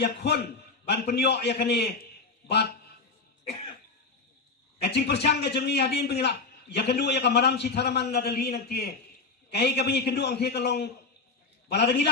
ya khon ban penyo ya kani bat kacing persang ka jengi hadin pengilap ya kedua ya kamaram si tharaman na dali nanti kai ka bingi kedua ang the kalong bala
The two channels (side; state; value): right; quieter; 4.1 dB